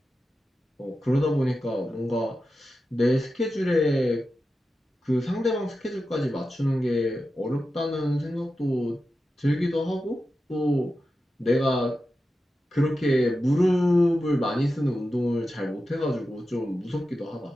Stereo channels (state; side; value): normal; both; correlation 0.91